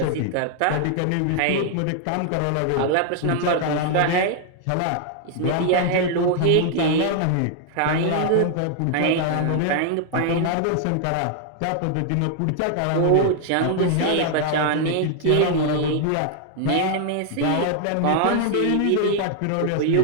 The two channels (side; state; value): both; different; correlation 0.00